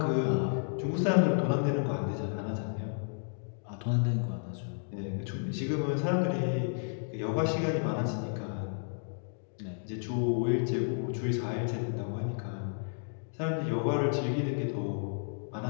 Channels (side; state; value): right; silent; digital silence